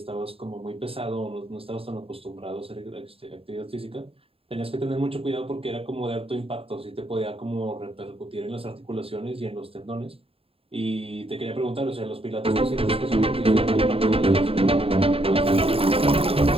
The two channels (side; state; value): left; late; 0.27 ms